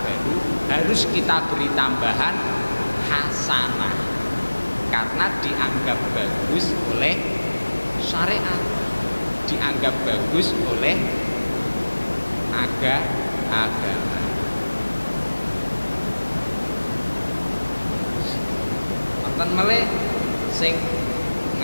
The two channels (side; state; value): both; inverted; correlation -1.00